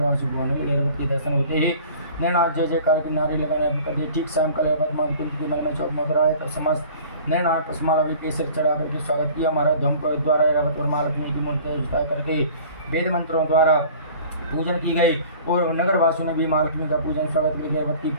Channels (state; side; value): inverted; both; correlation -0.46